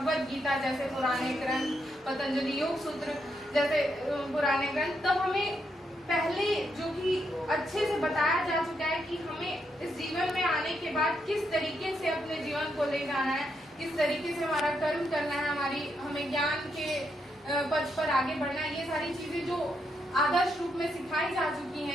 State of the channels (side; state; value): both; normal; correlation 0.79